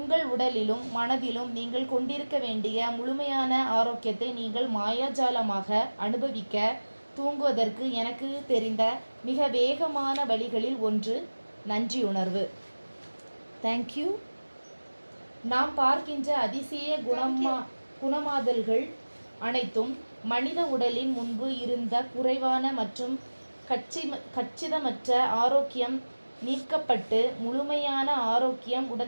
உடலிலும் மனதிலும் நீங்கள் கொண்டிருக்க வேண்டிய முழுமையான ஆரோக்கியத்தை நீங்கள் மாயாஜாலமாக அனுபவிக்க தூங்குவதற்கு எனக்கு தெரிந்த மிக வேகமான வழிகளில் ஒன்று நன்றியுணர்வு. தேங்க்யூ. நாம் பார்க்கின்ற அதிசய குணமாதல்கள் அனைத்தும் மனித உடலின் முன்பு இருந்த குறைவான மற்றும் கச்சிதமற்ற ஆரோக்கியம் நீக்கப்பட்டு முழுமையான ஆரோக்கியம்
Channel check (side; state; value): both; inverted; correlation -1.00